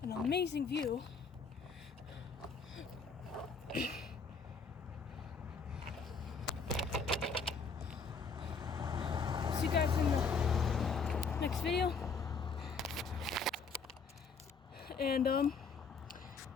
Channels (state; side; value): quieter; right; 4.9 dB